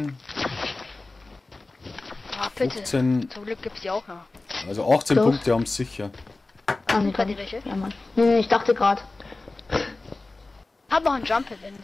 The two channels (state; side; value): quieter; right; 3.3 dB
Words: Ah, Pilze. 15, Zum Glück gibt's die auch noch. also 18 Los. Punkte haben sie sicher. Ah, nee, Bei dann dir nicht. welche? Ja, Mann. Nee, ich dachte gerade. Hab noch einen Jump, wenn